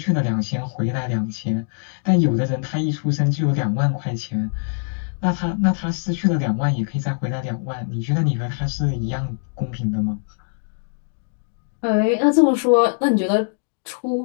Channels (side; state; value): right; silent; digital silence